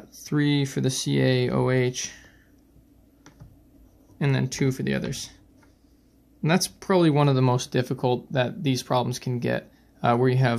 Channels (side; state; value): both; identical; correlation 1.00